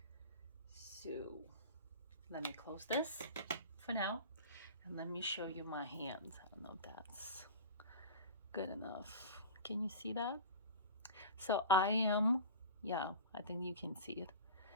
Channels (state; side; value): inverted; both; correlation -0.33